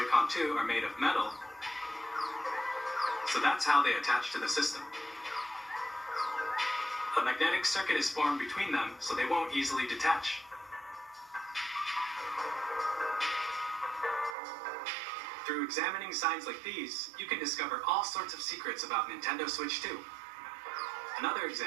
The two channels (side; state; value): left; drops out; at 14.4 s